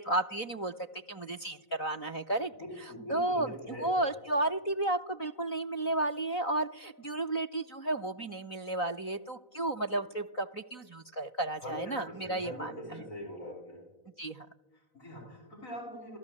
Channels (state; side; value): late; right; 4.0 ms